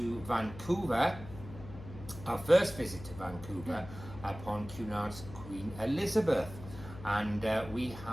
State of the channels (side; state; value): left; noise; hum, 14 dB below the sound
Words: Vancouver, our first visit to Vancouver upon Cunard's Queen Elizabeth, and we